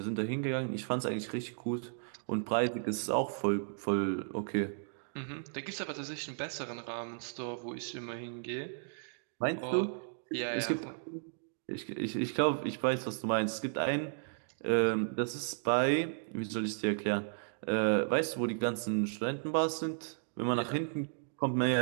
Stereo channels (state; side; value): silent; left; digital silence